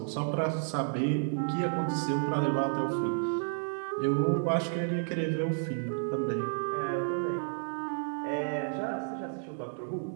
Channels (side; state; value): left; silent; digital silence